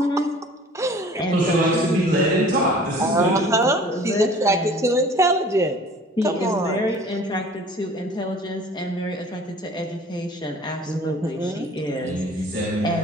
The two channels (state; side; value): normal; both; correlation 0.48